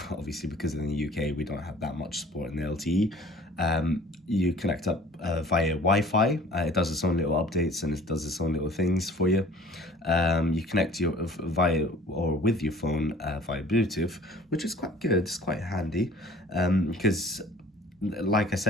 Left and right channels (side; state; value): both; normal; correlation 0.49